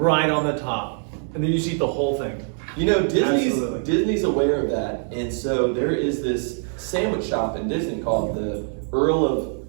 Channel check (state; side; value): silent; left; 63 dB below the other